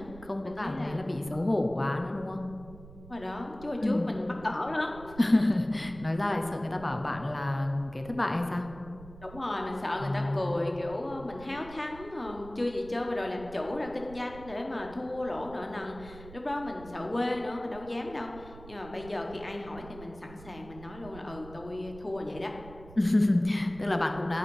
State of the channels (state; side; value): noise; right; rumble, 17 dB below the sound